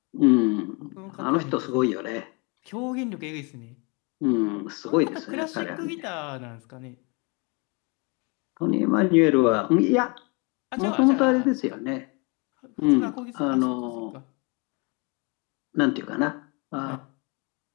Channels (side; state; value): right; quieter; 30.9 dB